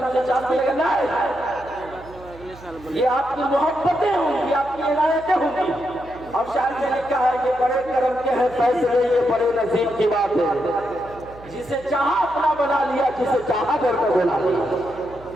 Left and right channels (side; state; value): right; noise; hum, 20 dB below the sound